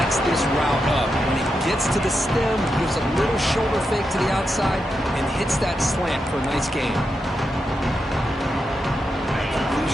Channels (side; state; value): both; normal; correlation 0.86